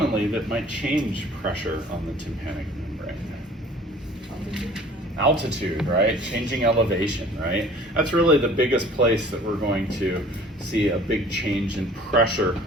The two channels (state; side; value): normal; both; correlation 0.50